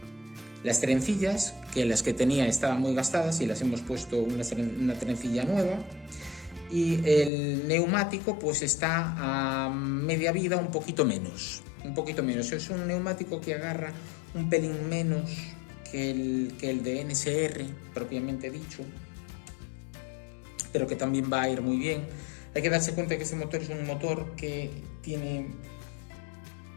las trencillas, que las que tenía estaban muy gastadas y las hemos puesto una trencilla nueva, y el neumático pues está a media vida, un poquito menos. Es un neumático que agarra un pelín menos que el de NSR propiamente dicho, pero que también va a ir muy bien. Hay que darse cuenta que este motor es un motor que tiene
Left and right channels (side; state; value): right; drops out; at 7.3 s